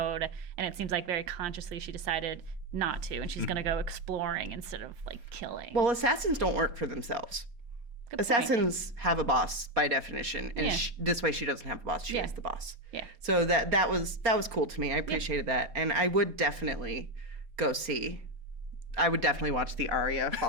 and it seems like very consciously she decided not to, and she's going to go exploring instead of like killing. Well, assassins don't work for themselves. Good point. Assassins have a boss by definition, and Yeah. this way she doesn't have a boss. She Yeah. is the boss. Yeah. So that was cool to me. I appreciated that, and I would definitely go see. I would definitely watch the Arya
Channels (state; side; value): late; left; 4.2 ms